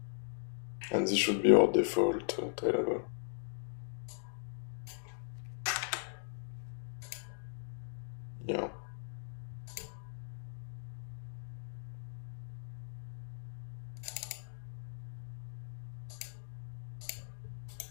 And this should be our default Tailable. Yeah.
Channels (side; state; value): right; silent; digital silence